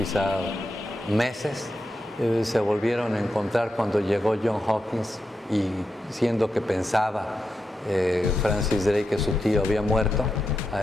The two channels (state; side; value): normal; both; correlation 0.87